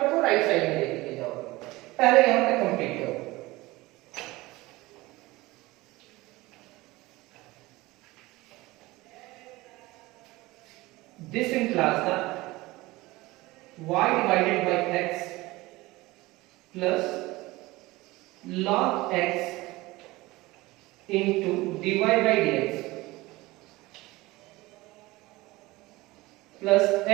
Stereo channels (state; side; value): quieter; left; 20.3 dB